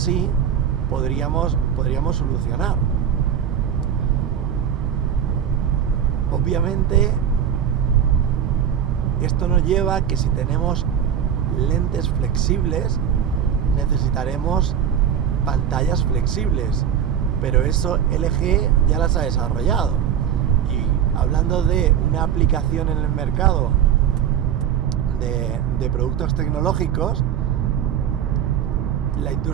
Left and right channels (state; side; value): quieter; left; 8.8 dB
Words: podríamos solucionar. Obviamente esto nos lleva a que si tenemos lentes flexibles necesitaremos pantallas flexibles, pero eso LG ya las ha desarrollado. Y hablando de una aplicación en el mercado de productos tecnológicos, la